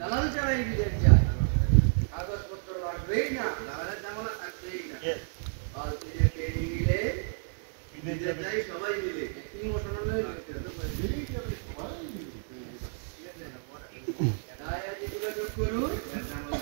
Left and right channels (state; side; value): silent; left; digital silence